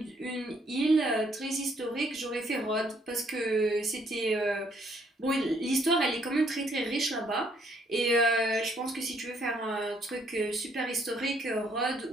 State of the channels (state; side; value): normal; both; correlation 0.67